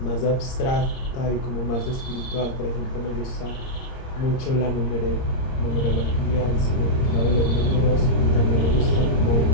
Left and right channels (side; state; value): right; late; 30 ms